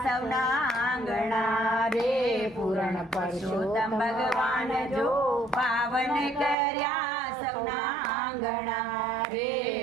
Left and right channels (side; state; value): left; drops out; at 6.6 s